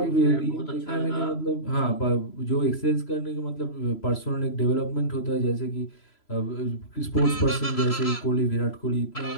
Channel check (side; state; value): right; late; 3.0 ms